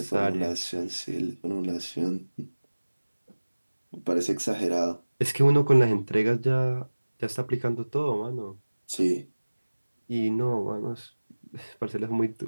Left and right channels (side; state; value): both; inverted; correlation -1.00